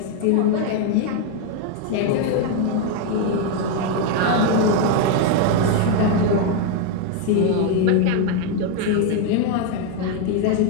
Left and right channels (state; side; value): different; both; correlation 0.01